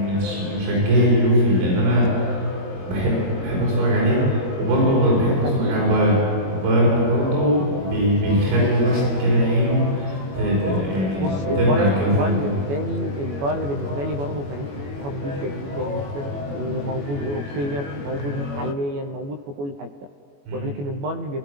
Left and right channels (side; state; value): left; late; 21 ms